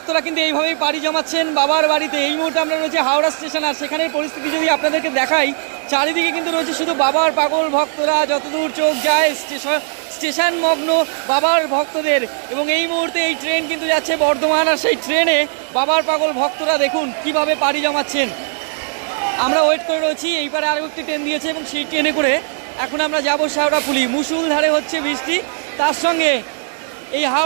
কিন্তু এইভাবেই পাড়ি জমাচ্ছেন বাবার বাড়িতে। এই মুহূর্তে আমরা রয়েছে হাওড়া স্টেশন, আর সেখানের পরিস্থিতি যদি আপনাদেরকে দেখাই, চারিদিকে কিন্তু রয়েছে শুধু বাবার পাগল ভক্তরা, যতদূর চোখ যায় স্টেশন মগ্ন বাবার ভক্তদের। এবং এই মুহূর্তে এই ট্রেন কিন্তু যাচ্ছে বর্ধমান, আর সেই ট্রেনে বাবার পাগল ভক্তরা দেখুন কিভাবে পাড়ি জমাচ্ছেন। আমরা ওয়েট করে রয়েছি, এইবারে আরও একটি ট্রেন দিয়েছে এবং সেই ট্রেনে করে এখন আমরা যাবো শেওড়াফুলি। মুষলধারে হচ্ছে বৃষ্টি, তার সঙ্গে এই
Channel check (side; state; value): left; silent; digital silence